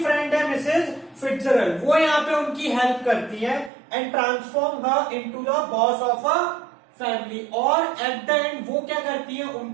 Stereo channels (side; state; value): left; drops out; at 3.7 s